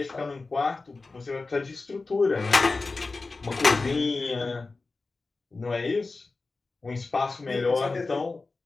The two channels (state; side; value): quieter; right; 3.7 dB